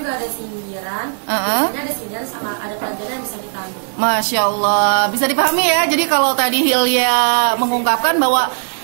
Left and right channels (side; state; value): left; silent; digital silence